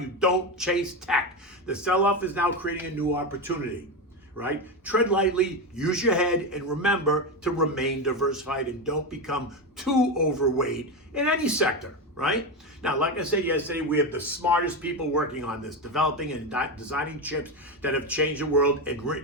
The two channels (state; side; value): normal; both; correlation 0.14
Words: don't chase tech. The sell-off is now creating a new opportunity, right? Tread lightly, use your head, and remember to remain diversified and don't become too overweight in any sector, right? Now, like I said yesterday, we have the smartest people working on this, developing and designing chips that have changed the world and